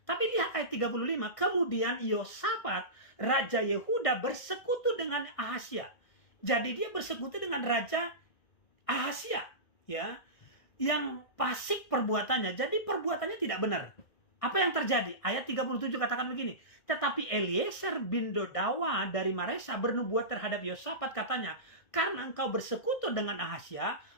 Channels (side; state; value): right; late; 1.5 ms